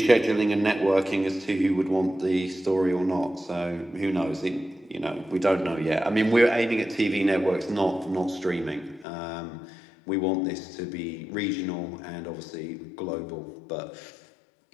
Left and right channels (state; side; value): drops out; right; at 9.1 s